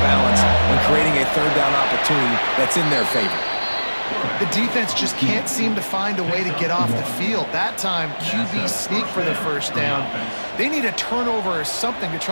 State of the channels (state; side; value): inverted; both; correlation -1.00